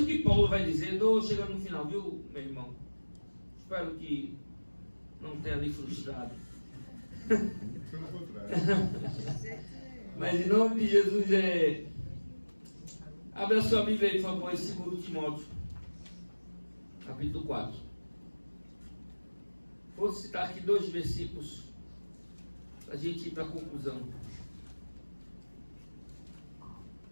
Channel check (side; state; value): both; inverted; correlation -1.00